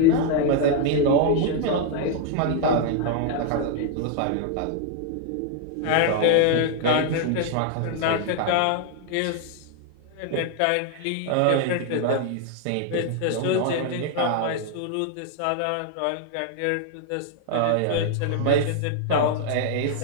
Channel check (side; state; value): both; different; correlation 0.00